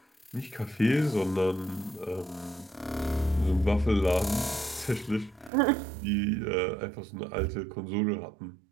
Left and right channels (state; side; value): drops out; left; at 5.5 s